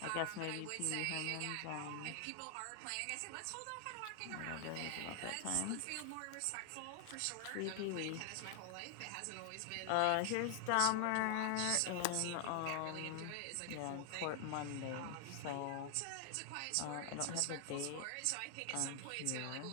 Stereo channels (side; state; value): both; different; correlation 0.00